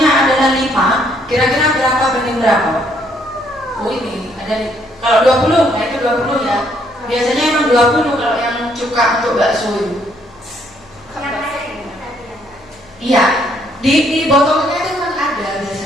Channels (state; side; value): noise; left; hum, 27 dB below the sound